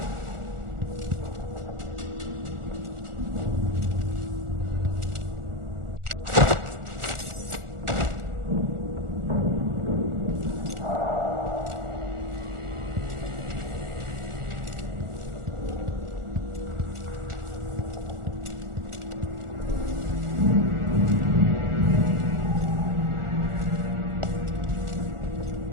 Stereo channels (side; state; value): left; late; 1.4 ms